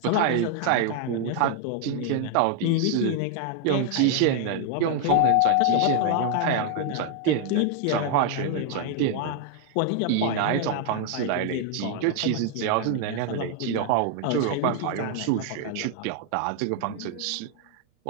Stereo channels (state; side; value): different; both; correlation 0.00